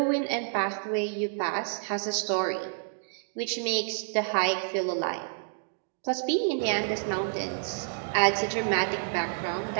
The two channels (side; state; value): left; silent; digital silence